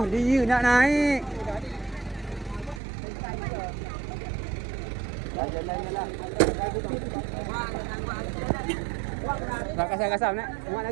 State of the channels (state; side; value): drops out; left; at 2.8 s